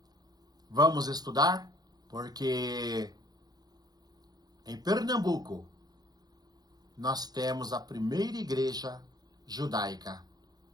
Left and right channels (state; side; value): late; left; 0.19 ms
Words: Vamos estudar? Porque em Pernambuco nós temos a primeira igreja judaica.